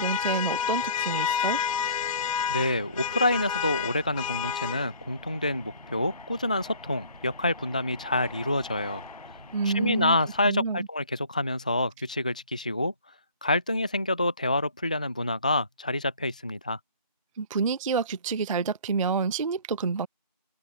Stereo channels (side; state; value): both; inverted; correlation -0.52